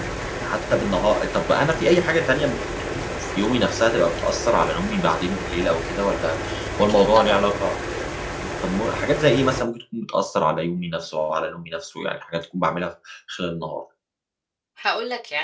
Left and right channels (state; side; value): identical; both; correlation 1.00